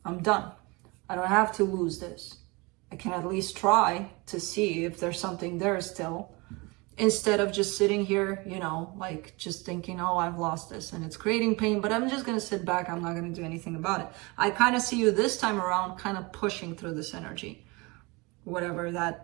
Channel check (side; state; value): left; quieter; 26.1 dB